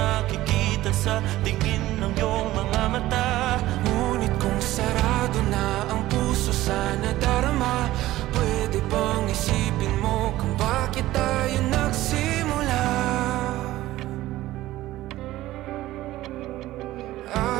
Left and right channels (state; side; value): quieter; left; 16.0 dB